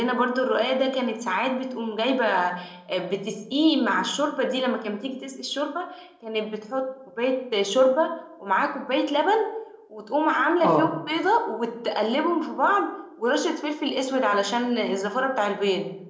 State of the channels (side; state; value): both; identical; correlation 1.00